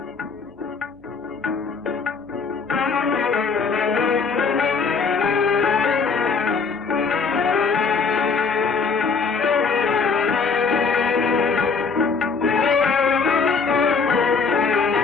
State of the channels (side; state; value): right; quieter; 5.1 dB